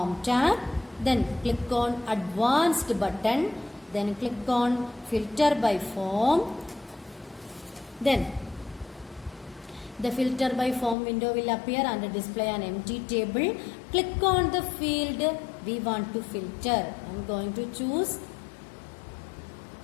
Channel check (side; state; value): right; drops out; at 11.0 s